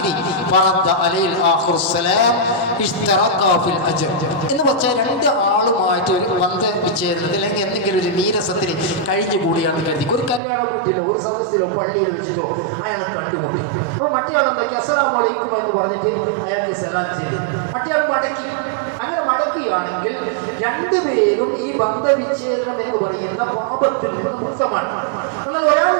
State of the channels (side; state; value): left; drops out; at 10.4 s